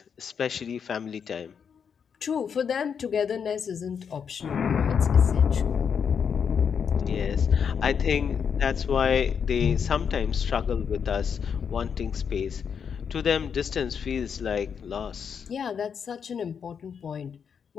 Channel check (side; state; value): right; quieter; 7.0 dB